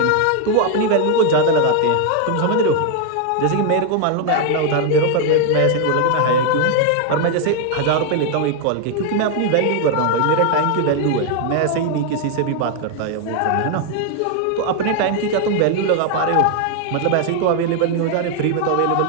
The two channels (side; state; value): both; different; correlation 0.00